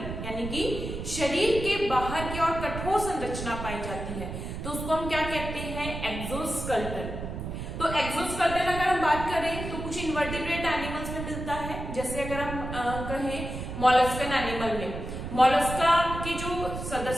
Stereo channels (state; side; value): noise; right; rumble, 7 dB below the sound